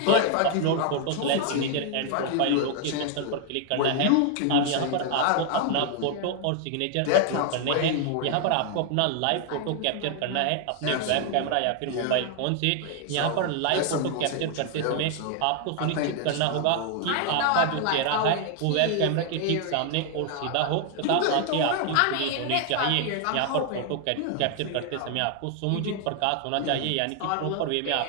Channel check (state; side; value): different; both; correlation 0.00